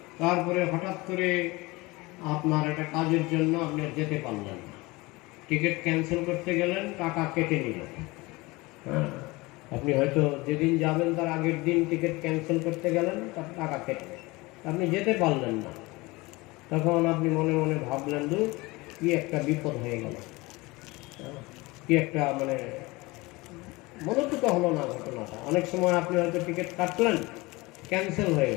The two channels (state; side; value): quieter; right; 22.8 dB